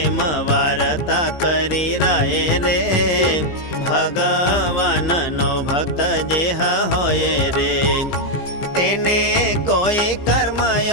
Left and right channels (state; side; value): late; right; 15 ms